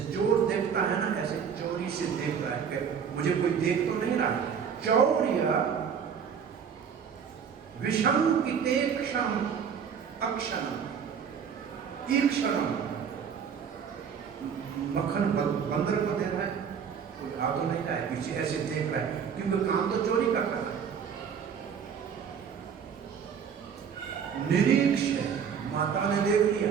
चोर देखता है ना, ऐसे चोरी से देख रहा है कि मुझे कोई देख तो नहीं रहा, चौर्य विशंकितेक्षम अक्षरम ईक्षरम, मक्खन बंदर को दे रहा है, कोई आ तो नहीं रहा है, पीछे ऐसे देख रहा है, क्योंकि काम तो चोरी का कर रहा है। निरीक्ष, माता ने देख लिया,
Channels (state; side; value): quieter; left; 7.2 dB